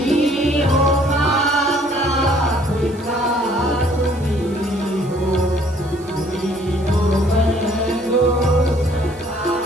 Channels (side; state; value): right; noise; hiss, 25 dB below the sound